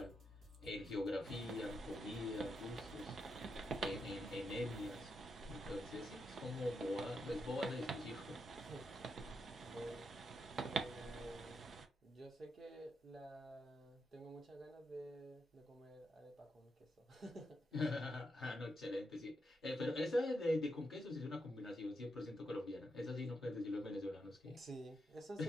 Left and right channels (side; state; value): both; normal; correlation 0.83